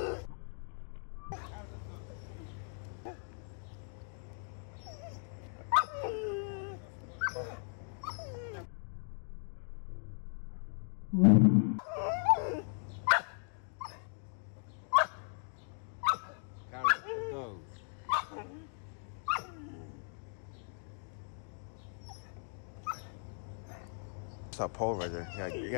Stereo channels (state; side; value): silent; right; 53 dB below the other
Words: Go. It's that pole right there. You